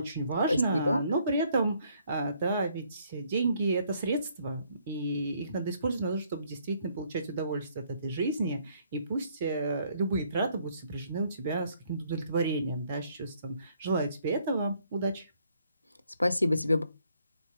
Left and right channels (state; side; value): inverted; both; correlation -0.67